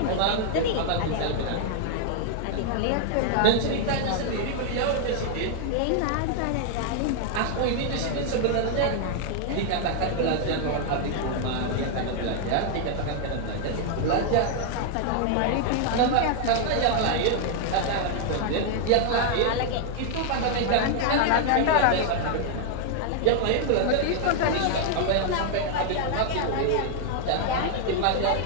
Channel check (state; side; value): different; both; correlation 0.00